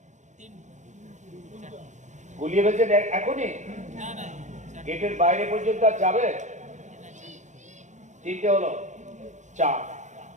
গুলিয়ে ফেলছেন এখনই? গেটের বাইরে পর্যন্ত আর যাবে? তিনটে হলো, চার।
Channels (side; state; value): left; late; 0.35 ms